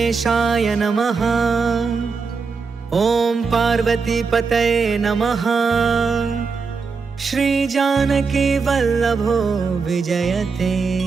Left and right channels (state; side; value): quieter; left; 5.0 dB